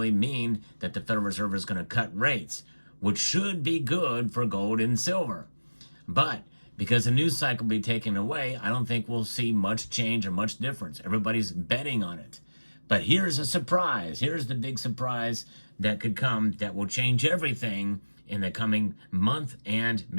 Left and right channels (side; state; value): both; inverted; correlation -1.00